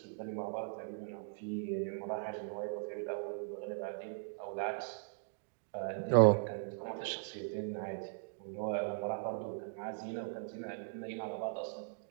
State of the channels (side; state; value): left; silent; digital silence